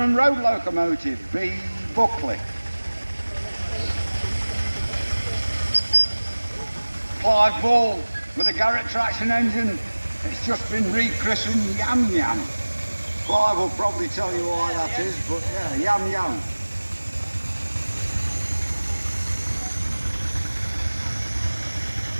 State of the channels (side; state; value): both; inverted; correlation -1.00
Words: road locomotive, B Buckley. Clive Ball with a Garrett traction engine. It's just been rechristened Yam Yam. Clive will probably tell you why that is, but yeah, Yam Yam.